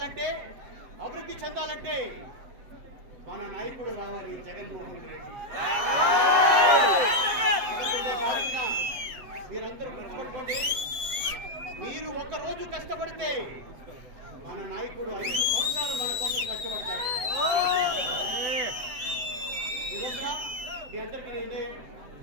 అభివృద్ధి చెందాలంటే మన నాయకుడు రావాలి, జగన్మోహన్ రెడ్డి. తారీఖున మీరందరూ గుర్తుపెట్టుకోండి, మీరు ఒక రోజు కష్టపడితే మన నాయకుడు 5 సంవత్సరాలు మన కోసం కష్టపడతాడు. ఈ రోజున మీ అందరికీ నేను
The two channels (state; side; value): late; left; 7.7 ms